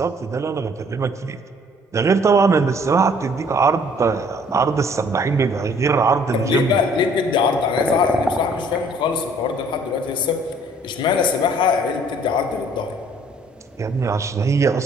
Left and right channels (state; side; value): normal; both; correlation 0.58